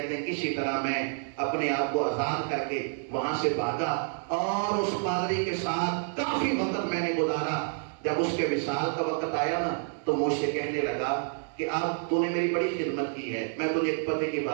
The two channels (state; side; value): silent; left; 59 dB below the other